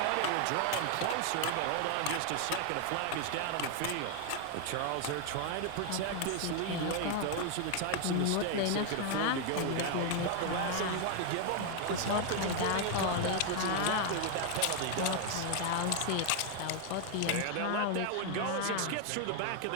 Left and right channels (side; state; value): both; different; correlation 0.00